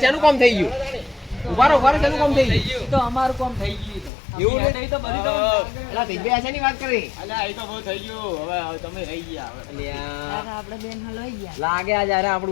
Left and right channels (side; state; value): right; drops out; at 4.1 s